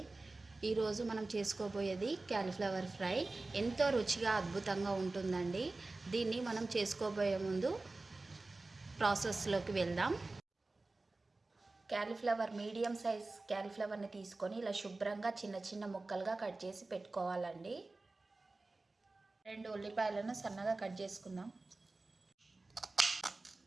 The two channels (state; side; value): quieter; left; 3.3 dB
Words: ఈరోజు మనం చేసుకోబోయేది క్యాలీఫ్లవర్ ఫ్రై. ఎంతో రుచిగా అద్భుతంగా ఉంటుందండి. దీన్ని మనం చేసుకోబోయే ముందు ప్రాసెస్లోకి వెళ్దాం. క్యాలీఫ్లవర్ మీడియం సైజ్ క్యాలీఫ్లవర్ని తీసుకొని ఇలా శుభ్రంగా చిన్న చిన్న ముక్కలుగా కట్ చేసి పెట్టుకోవాలండి. 2 ఉల్లిపాయలను సన్నగా కట్ చేసుకుందాం.